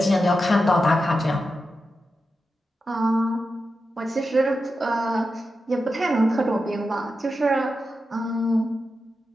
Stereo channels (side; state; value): both; normal; correlation 0.90